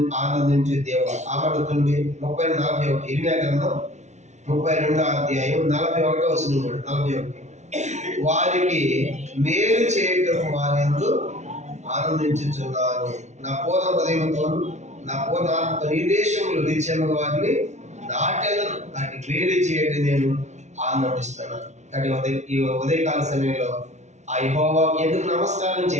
ఆనందించే దేవుడు. ఆమడుతుంది 32:41 ఇర్మియా గ్రంథం 32:41 వారికి మేలు చేయటం వారెందు ఆనందించుచున్నాను, నా పూర్ణ హృదయంతోను నా పూర్ణ ఆత్మతో ఈ దేశంలో నిత్యముగా వారిని నాటెలను, వాటికి మేలు చేయటం నేను ఆనందిస్తున్నాను. కాబట్టి ఈ ఉదయకాల సమయంలో ఆ యెహోవా ఎందుకు నమస్కారం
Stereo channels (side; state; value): left; late; 0.33 ms